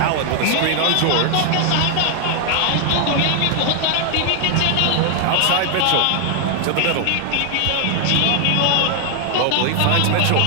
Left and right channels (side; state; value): both; different; correlation 0.00